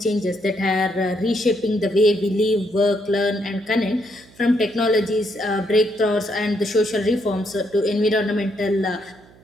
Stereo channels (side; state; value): right; noise; hum, 26 dB below the sound